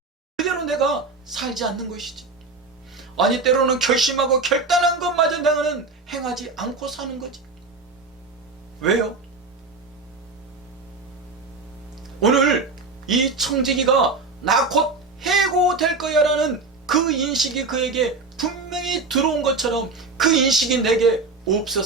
그대로 내가 살지 않는 것이지? 아니 때로는 결심하고 결단한 것마저 내가는 행하지 않고 사는 거지. 왜요? 오늘 이 청지기가 나 곧 해고될 거야 라는 그 인식이 그에게 분명히 들어온 것처럼 그 인식이 내게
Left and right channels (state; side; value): quieter; left; 3.8 dB